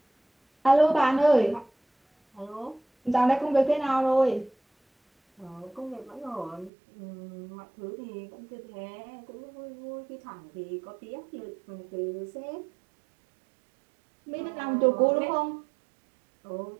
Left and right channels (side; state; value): left; drops out; at 6.7 s